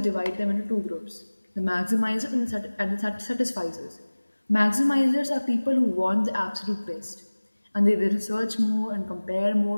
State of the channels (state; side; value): inverted; both; correlation -1.00